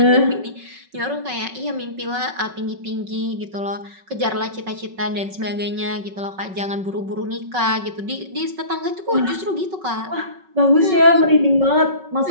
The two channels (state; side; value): late; left; 5.4 ms